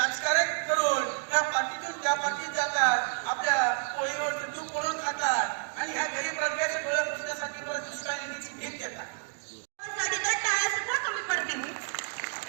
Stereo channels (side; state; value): left; silent; 58 dB below the other